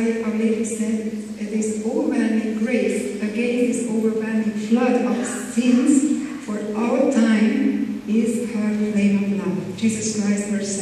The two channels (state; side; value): identical; both; correlation 1.00